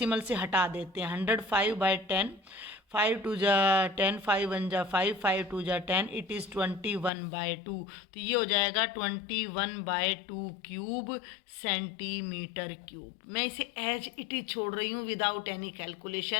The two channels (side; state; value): right; drops out; at 7.1 s